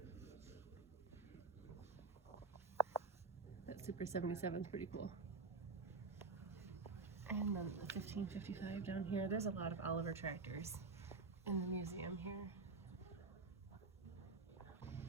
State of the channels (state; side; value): quieter; left; 4.0 dB